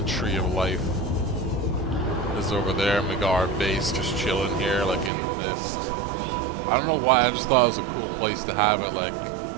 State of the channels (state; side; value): drops out; left; at 5.1 s